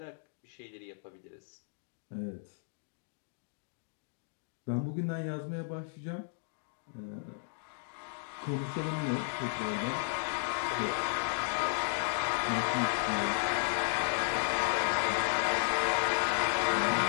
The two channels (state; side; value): silent; right; digital silence